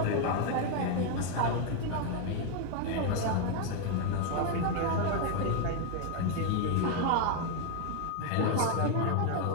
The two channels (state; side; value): different; both; correlation 0.01